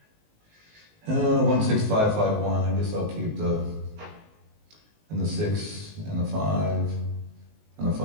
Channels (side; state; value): left; late; 19 ms